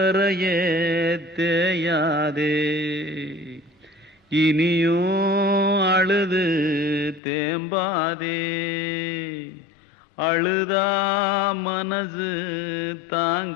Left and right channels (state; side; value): drops out; right; at 7.2 s